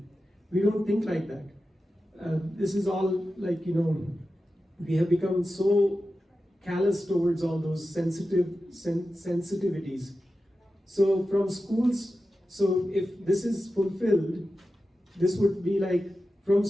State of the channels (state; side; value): normal; both; correlation 0.92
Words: We don't think like that. This is all we have become so callous towards all those sensitivities. So from schools, if this is fulfilled, this would be like from